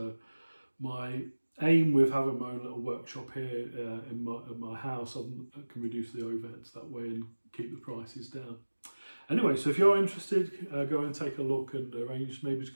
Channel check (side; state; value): both; inverted; correlation -1.00